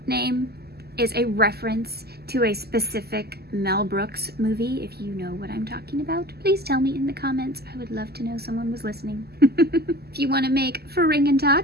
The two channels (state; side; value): late; left; 0.46 ms